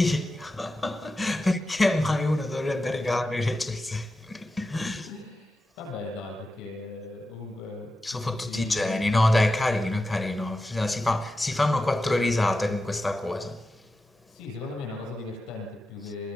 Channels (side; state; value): both; normal; correlation 0.91